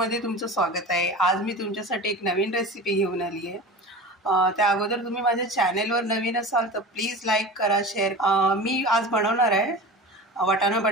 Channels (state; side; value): normal; both; correlation 0.33